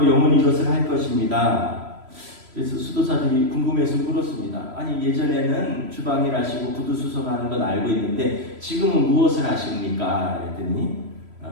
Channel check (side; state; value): left; late; 3.0 ms